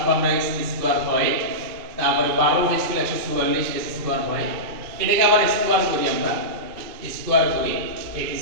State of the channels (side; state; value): left; late; 2.4 ms